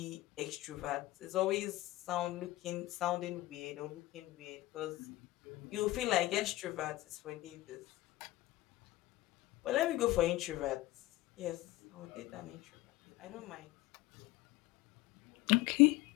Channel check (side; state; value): right; quieter; 17.6 dB